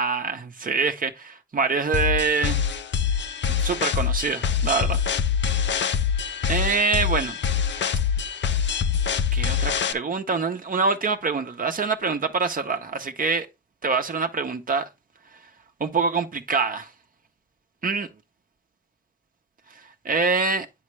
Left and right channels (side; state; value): both; normal; correlation 0.04